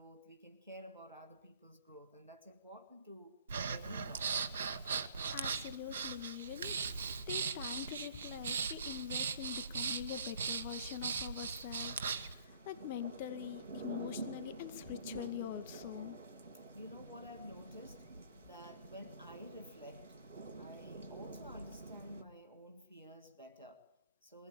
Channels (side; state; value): both; inverted; correlation -0.55